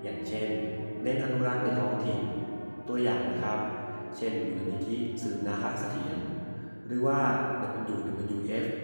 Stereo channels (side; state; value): both; inverted; correlation -1.00